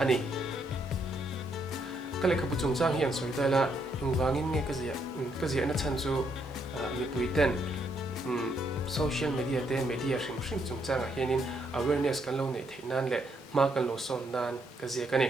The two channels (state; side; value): normal; both; correlation 0.74